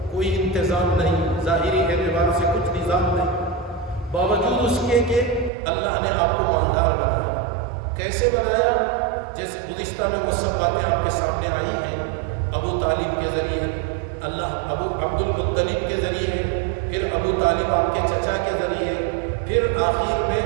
کوئی انتظام نہیں، ظاہری اعتبار سے کچھ نظام نہیں. باوجود اس کے کہ اللہ نے آپ کو مالدار بنایا. کیسے بنایا؟ جیسے گزشتہ میں وہ سب باتیں آپ کے سامنے آئی ہیں. ابو طالب کے ذریعے، ابو عبد المطلب کے ذریعے، پھر ابو طالب آپ کے چچا کے ذریعے، پھر آخر میں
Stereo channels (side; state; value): left; drops out; at 5.5 s